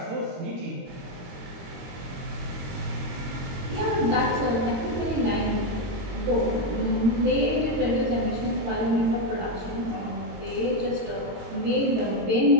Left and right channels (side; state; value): left; late; 22 ms